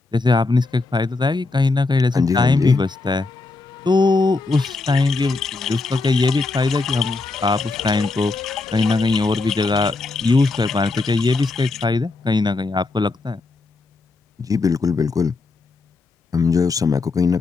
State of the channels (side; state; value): right; quieter; 3.6 dB